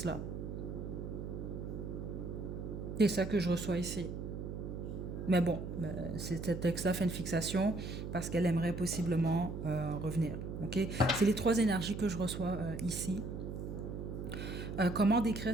C'est ça que je reçois ici. Mais bon, cet ex-là fait une fixation parce qu'elle aimerait possiblement revenir. Okay, c'est les trois énergies que je reçois ici. Comment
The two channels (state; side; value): noise; right; hum, 6 dB below the sound